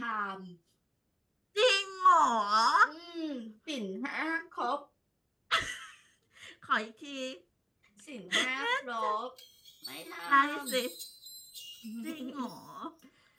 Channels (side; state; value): both; identical; correlation 1.00